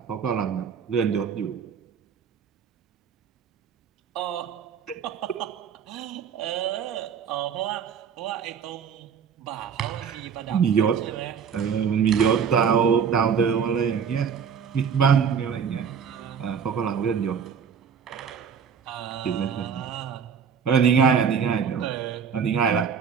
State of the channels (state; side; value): quieter; left; 7.0 dB